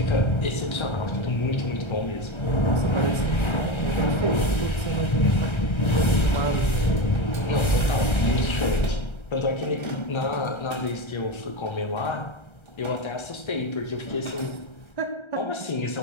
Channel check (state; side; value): late; right; 1.3 ms